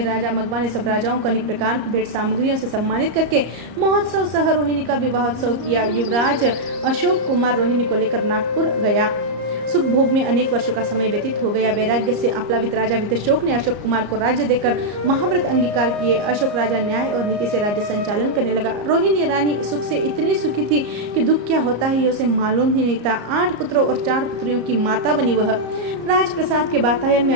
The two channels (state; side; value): late; left; 34 ms